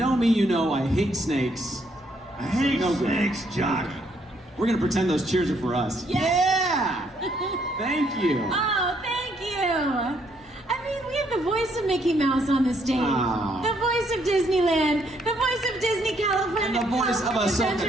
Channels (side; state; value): both; normal; correlation 0.71